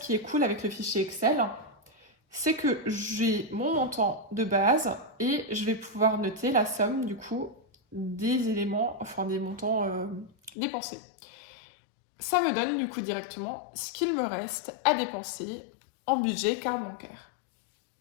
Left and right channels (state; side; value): drops out; right; at 10.5 s